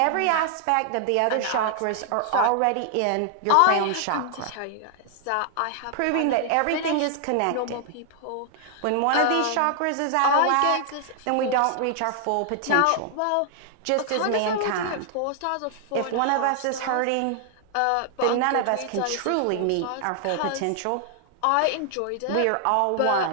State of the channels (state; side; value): different; both; correlation 0.00